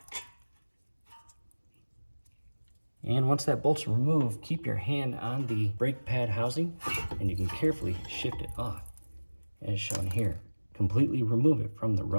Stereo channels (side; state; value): both; inverted; correlation -1.00